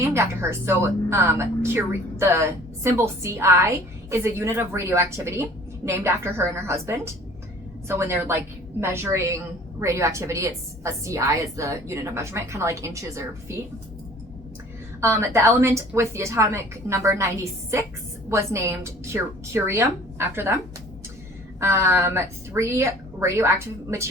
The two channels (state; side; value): normal; both; correlation 0.50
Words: after her. So Curie, the symbol CI is a unit of radioactivity named after her and her husband. So when they're like measuring radioactivity. It's a CI is the unit of measurement, kind of like inches or feet. The element with the atomic number 96 was named curium after them. 3 radioactive